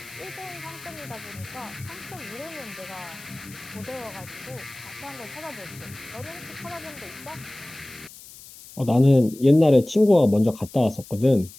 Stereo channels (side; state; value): left; noise; hiss, 18 dB below the sound